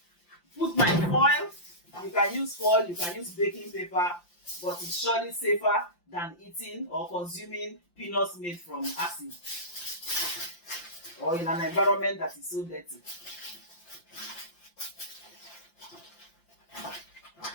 put my foil. You can use foil, you can use baking paper, but it's surely safer than eating or consuming peanuts made from acid or in an environment that is so dirty.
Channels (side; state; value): right; late; 5.8 ms